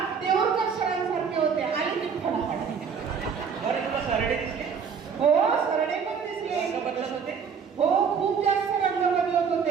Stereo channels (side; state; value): left; quieter; 6.4 dB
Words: देऊळकर सरांसारखे होते. आली ती फडाफड. बरं तुला सरडे दिसले? हो, सरडे पण दिसले. रंग बदलत होते? हो, खूप जास्त रंग बदलत होते.